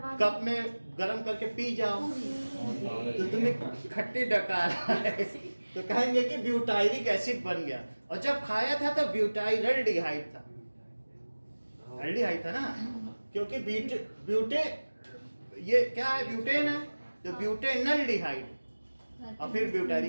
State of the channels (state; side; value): inverted; both; correlation -1.00